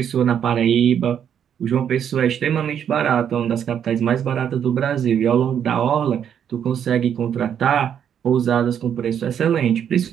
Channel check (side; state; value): left; quieter; 8.8 dB